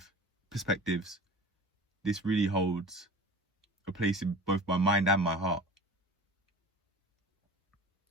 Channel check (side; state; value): both; normal; correlation 0.39